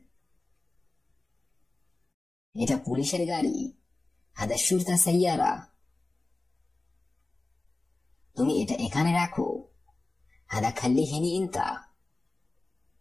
এটা পুলিশের গাড়ি হাদা শুরতা সাইয়ারা। তুমি এটা এখানে রাখো হাদা খাল্লি হিনি ইনতা।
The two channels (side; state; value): right; quieter; 3.1 dB